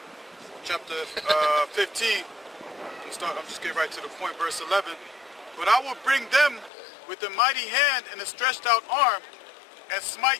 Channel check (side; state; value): right; drops out; at 6.7 s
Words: chapter 15. I'm just getting right to the point, verse 11. But I will bring them with a mighty hand and a stretched out arm, and